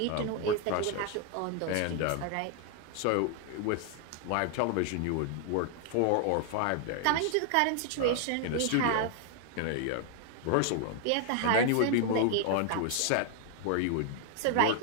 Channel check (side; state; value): both; different; correlation 0.00